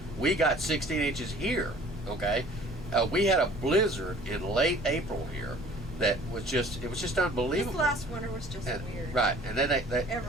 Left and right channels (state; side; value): normal; both; correlation 0.50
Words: we got 16 inches here, okay? We had a blizzard in late April here that was just unbelievable. This last winter was just And- weird. Right. And then they